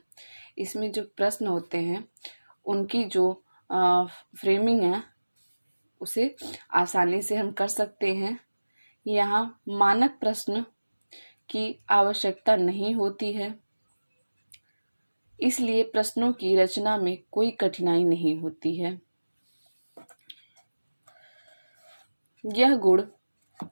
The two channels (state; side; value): inverted; both; correlation -1.00